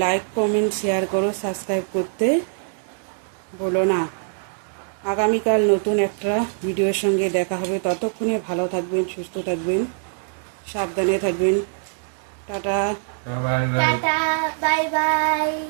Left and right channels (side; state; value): left; silent; digital silence